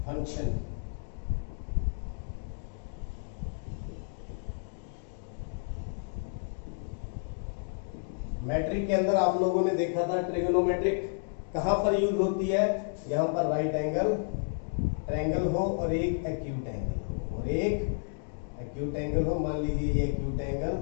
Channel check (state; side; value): silent; right; digital silence